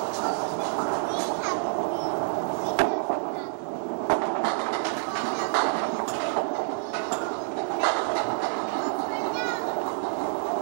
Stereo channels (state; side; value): silent; left; 60 dB below the other